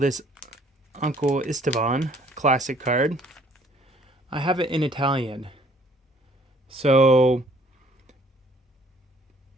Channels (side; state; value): both; normal; correlation 0.60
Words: Uncle Esteban classic card, I have it in Italian. So